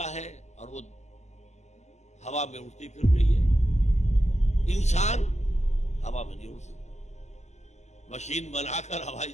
ہے اور وہ ہوا میں اڑتی پھر رہی ہے. انسان ہوا میں نہیں اڑ سکتا. مشین بنا کر ہوائی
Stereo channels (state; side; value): late; right; 0.33 ms